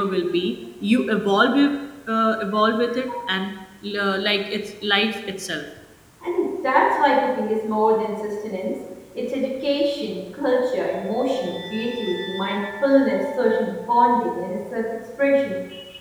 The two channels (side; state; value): both; identical; correlation 1.00